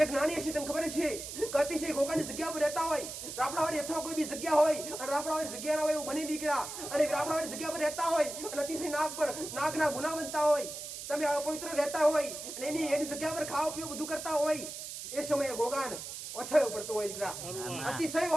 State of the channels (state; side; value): noise; right; hiss, 8 dB below the sound